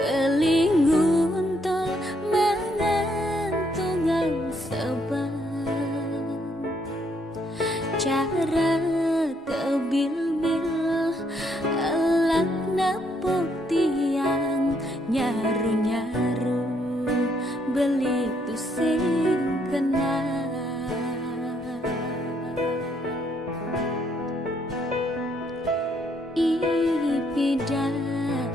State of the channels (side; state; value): both; normal; correlation 0.71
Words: tol mengantungan seban cara kebil-bil elak nepuk tiang nyaru-nyaru beli tusing